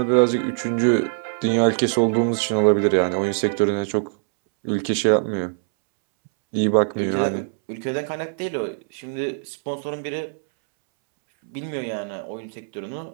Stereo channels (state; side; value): silent; left; 64 dB below the other